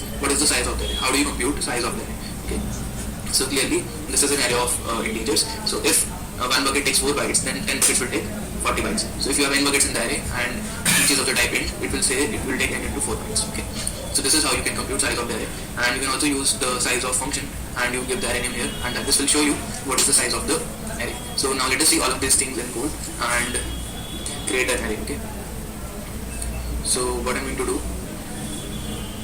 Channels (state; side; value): identical; both; correlation 1.00